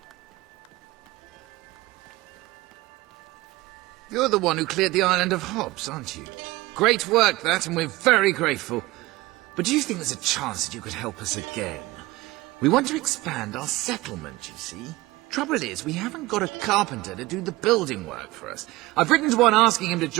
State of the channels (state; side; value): quieter; left; 19.8 dB